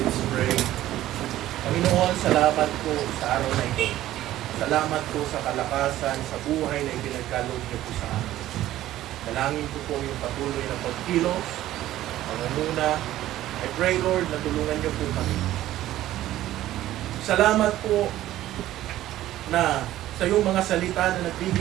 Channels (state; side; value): quieter; left; 14.2 dB